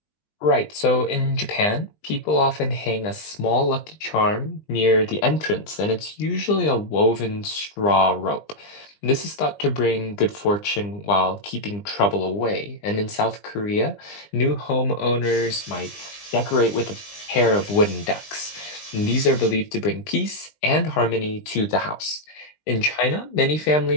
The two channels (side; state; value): right; late; 20 ms